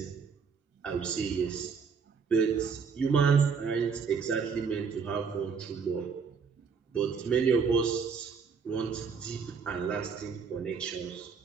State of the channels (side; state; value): left; quieter; 5.8 dB